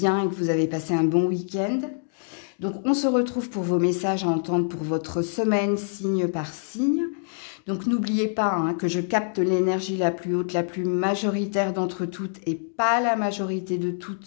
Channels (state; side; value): silent; right; digital silence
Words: et que vous avez passé un bon week-end. Donc on se retrouve pour vos messages à entendre pour votre semaine signe par signe. Donc n'oubliez pas que je capte l'énergie la plus haute, la plus majoritaire d'entre toutes et pas la majorité de